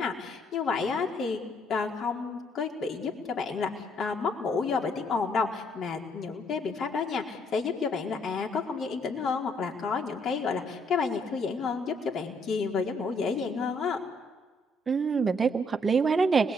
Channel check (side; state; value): both; normal; correlation 0.69